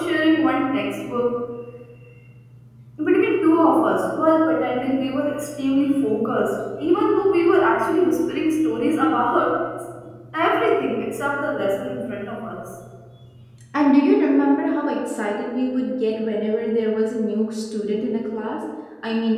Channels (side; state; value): both; identical; correlation 1.00